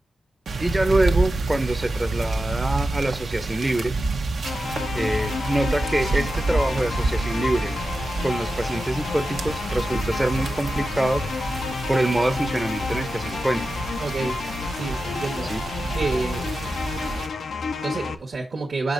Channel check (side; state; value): both; normal; correlation 0.91